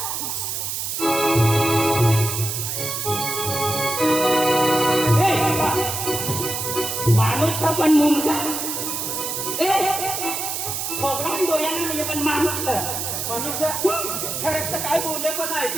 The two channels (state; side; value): noise; right; hiss, 3 dB below the sound